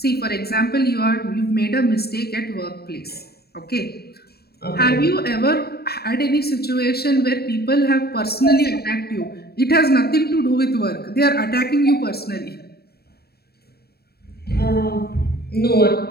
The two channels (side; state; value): right; late; 0.46 ms